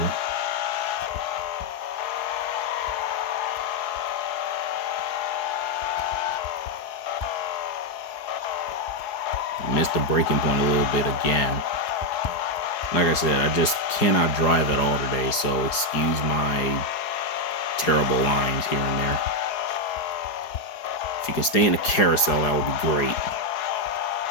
Missed the braking point a little bit again. Like I said, I just cannot drive at all today, so excuse my terrible lines here and there. If you can stay in a carousel, that would be great.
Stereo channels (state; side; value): late; right; 4.8 ms